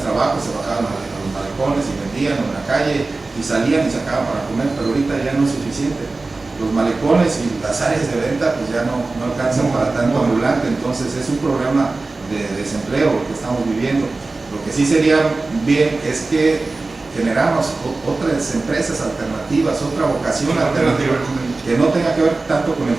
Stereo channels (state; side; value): quieter; left; 3.5 dB